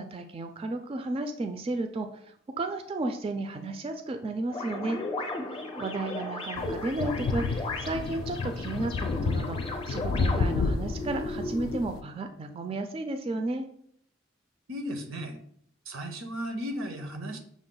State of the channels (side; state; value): both; normal; correlation 0.65